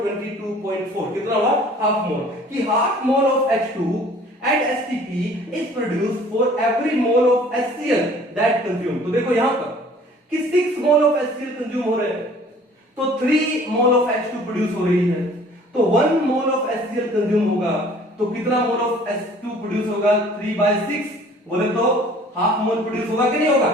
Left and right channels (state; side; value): normal; both; correlation 0.52